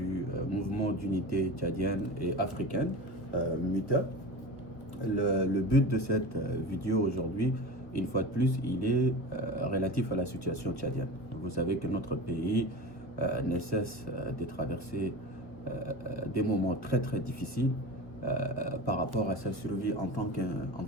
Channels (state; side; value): late; right; 1.3 ms